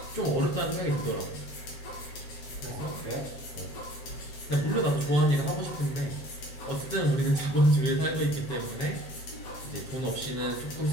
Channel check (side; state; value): right; late; 7.4 ms